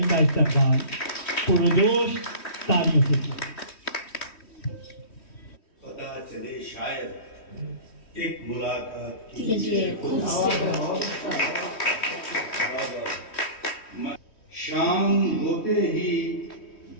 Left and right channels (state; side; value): late; right; 3.1 ms